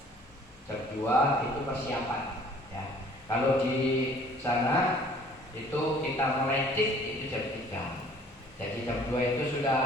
Jam 2 itu persiapan. Ya, kalau di sana itu kita mulai itu jam 3. Jadi jam 2 itu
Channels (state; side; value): normal; both; correlation 0.54